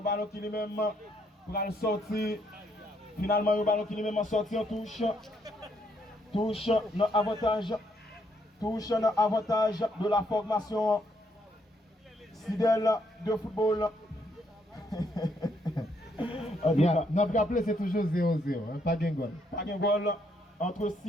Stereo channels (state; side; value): normal; both; correlation 0.73